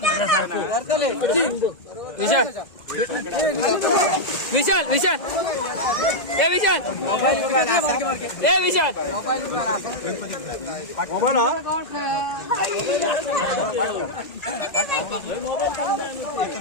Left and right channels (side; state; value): right; late; 2.0 ms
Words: विशाल विशाल विशाल ए विशाल ए विशाल